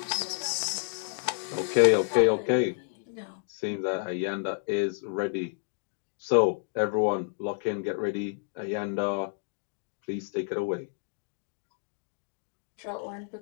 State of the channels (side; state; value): right; silent; digital silence